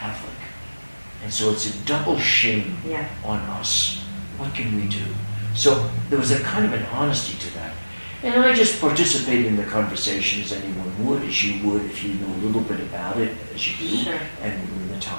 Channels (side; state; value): both; inverted; correlation -1.00